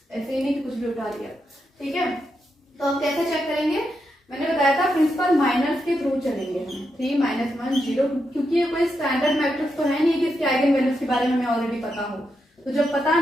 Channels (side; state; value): both; normal; correlation 0.84